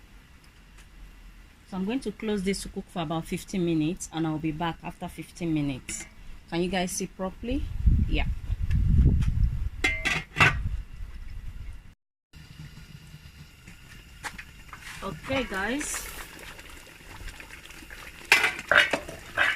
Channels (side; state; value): both; identical; correlation 1.00